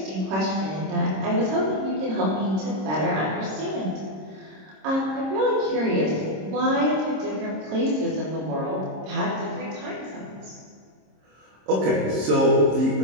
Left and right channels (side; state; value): left; late; 26 ms